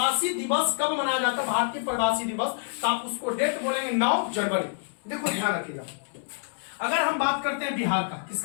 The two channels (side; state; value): right; silent; 60 dB below the other